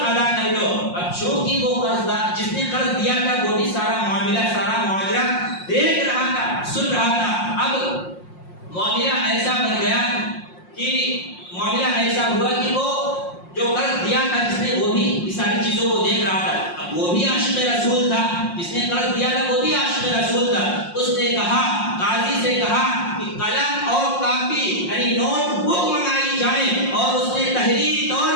ادا کر لو۔ اب چونکہ وہ قرضدار جس نے قرض دیا تھا وہ بھی سارا معاملہ دیکھ رہا تھا، سن رہا تھا۔ اب معاملہ ایسا بن گیا کہ معاملہ ایسا ہوا کہ وہ جو قرض دیا تھا جس نے وہ بھی ساری چیزوں کو دیکھ رہا تھا۔ اب وہ بھی عاشق رسول تھا، جس نے قرض دیا تھا وہ بھی عاشق رسول تھا۔ اس نے کہا، قاضی سے کہا کہ قلم اور کاپی یعنی نوٹ بک منگائی جائے، اور اس نے تحریری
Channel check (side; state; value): right; late; 5.6 ms